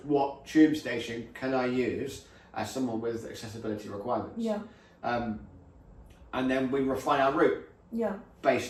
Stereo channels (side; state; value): both; identical; correlation 1.00